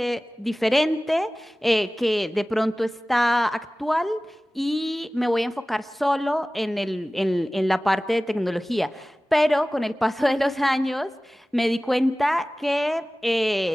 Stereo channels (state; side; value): normal; both; correlation 0.98